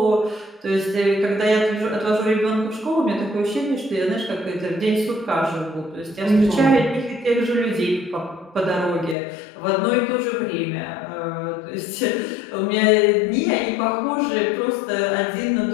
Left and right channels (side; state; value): right; drops out; at 9.2 s